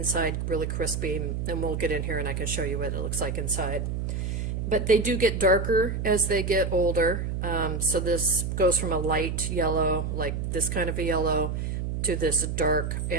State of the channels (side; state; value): right; noise; hum, 2 dB below the sound